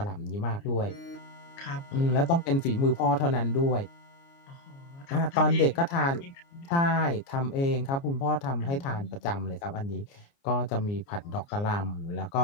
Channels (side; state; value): right; late; 29 ms